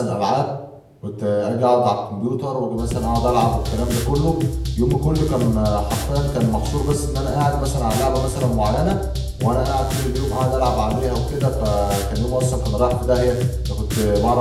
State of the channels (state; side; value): identical; both; correlation 1.00